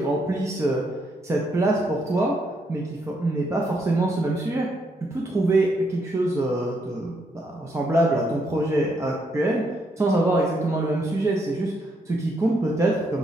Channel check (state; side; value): normal; both; correlation 0.75